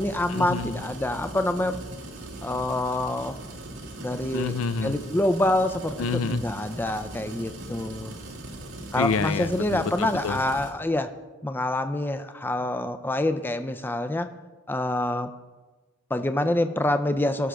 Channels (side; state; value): both; normal; correlation 0.74